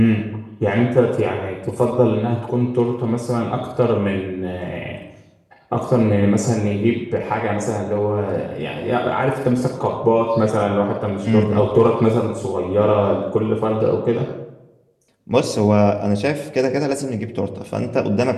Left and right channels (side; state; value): both; identical; correlation 1.00